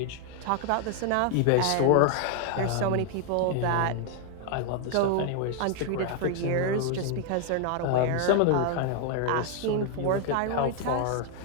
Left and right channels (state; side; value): different; both; correlation 0.00